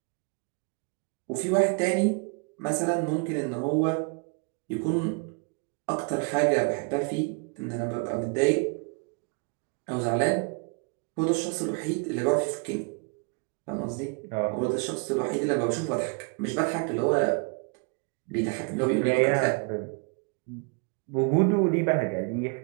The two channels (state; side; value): quieter; left; 34.8 dB